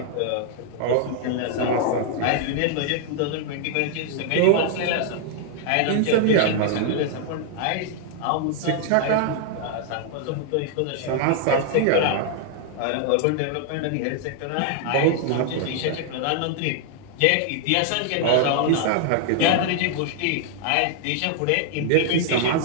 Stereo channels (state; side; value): different; both; correlation 0.00